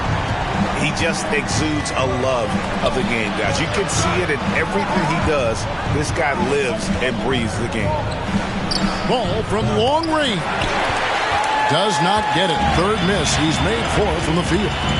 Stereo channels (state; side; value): identical; both; correlation 1.00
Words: He just exudes a love of the game, guys. You can see it in everything he does. This guy lives and breathes the game. Ball from long range. Does not get it. Third miss. He's made 4 from the field.